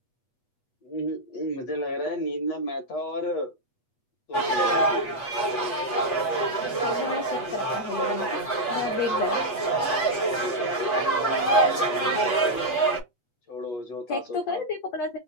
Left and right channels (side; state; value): right; late; 8.3 ms